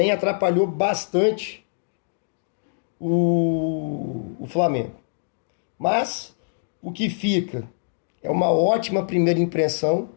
atrapalhou bastante o Flamengo. Mas o que fica é uma ótima primeira impressão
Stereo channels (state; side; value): silent; right; digital silence